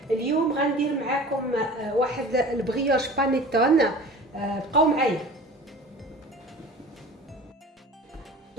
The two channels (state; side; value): normal; both; correlation 0.40